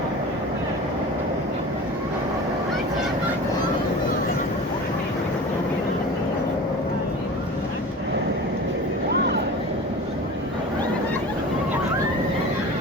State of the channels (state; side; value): normal; both; correlation 0.36